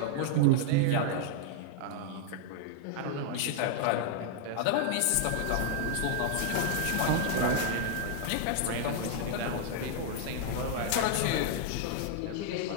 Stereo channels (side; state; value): both; different; correlation 0.00